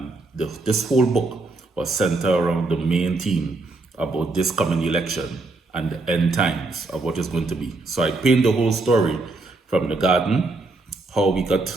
this whole book was centered around the main theme about this coming election and the end times of what is going to be. So I paint the whole story from the garden, how we got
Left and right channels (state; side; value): quieter; left; 3.3 dB